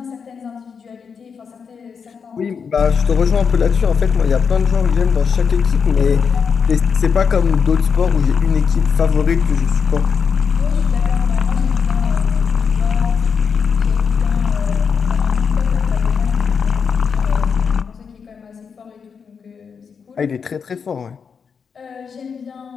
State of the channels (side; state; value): right; quieter; 6.2 dB